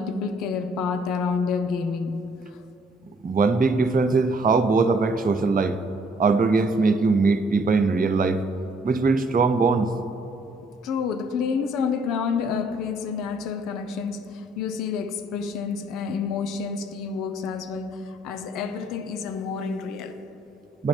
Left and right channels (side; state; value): both; normal; correlation 0.64